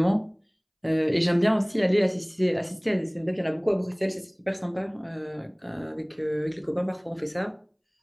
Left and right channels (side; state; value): both; identical; correlation 1.00